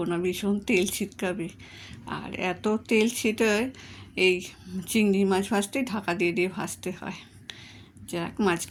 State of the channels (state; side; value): identical; both; correlation 1.00